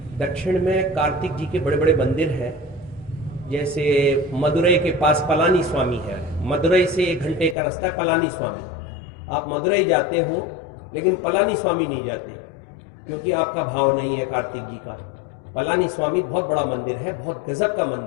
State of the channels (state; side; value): drops out; right; at 7.6 s